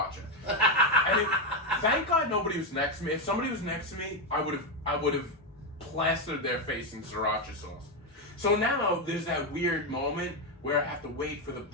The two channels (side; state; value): both; normal; correlation 0.07